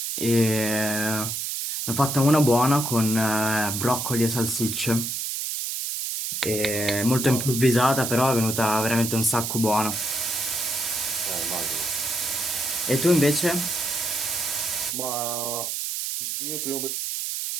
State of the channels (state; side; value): noise; right; hiss, 3 dB below the sound